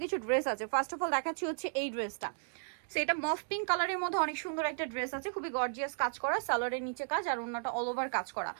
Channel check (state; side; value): silent; left; digital silence